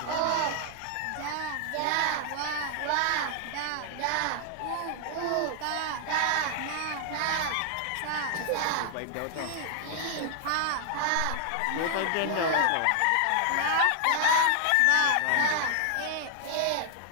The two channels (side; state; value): both; different; correlation 0.00